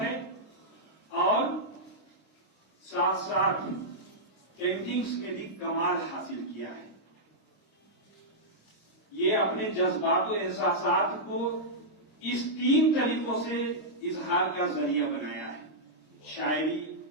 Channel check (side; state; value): right; late; 26 ms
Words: और साथ साथ पेंटिंग्स में भी कमाल हासिल किया है। ये अपने जज्बात और एहसासात को इस 3 तरीकों से इजहार का जरिया बनाया है, शायरी,